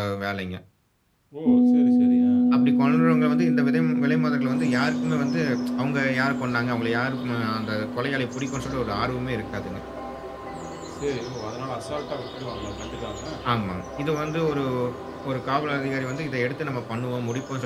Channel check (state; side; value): identical; both; correlation 1.00